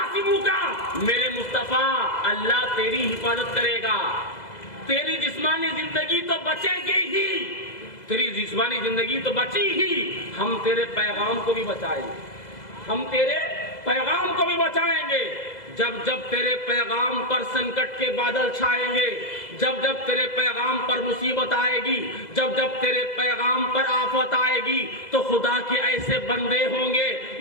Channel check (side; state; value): right; late; 2.0 ms